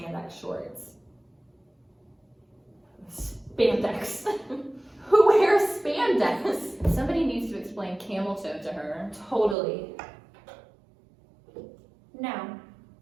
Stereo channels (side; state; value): left; drops out; at 9.6 s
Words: shorts. Spandex. Who wears spandex? Somebody needs to explain camel toe to her. Totally. Now,